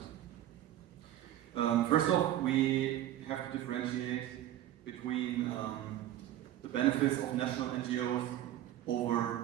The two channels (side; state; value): left; quieter; 12.8 dB